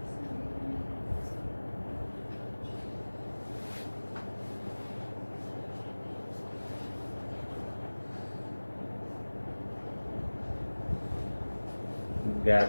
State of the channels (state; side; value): inverted; both; correlation -1.00